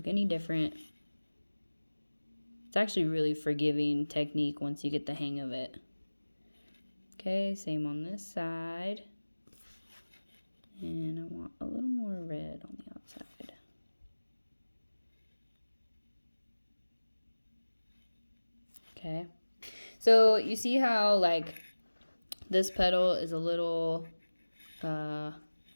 any different. It's actually really forgiving technique once you get the hang of it. Okay, same on this side. And I want a little more red on the outside. Okay, so you see how like this petal is a little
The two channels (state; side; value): inverted; both; correlation -1.00